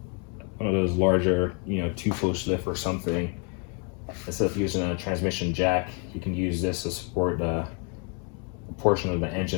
one of those larger, you know, 2-post lift or something, instead of using a transmission jack, you can use this to support a portion of the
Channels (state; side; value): quieter; right; 38.5 dB